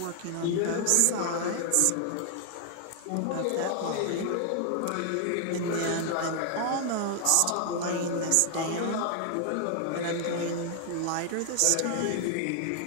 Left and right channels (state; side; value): different; both; correlation 0.00